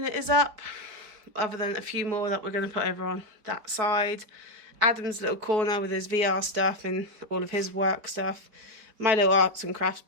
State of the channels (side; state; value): left; late; 4.3 ms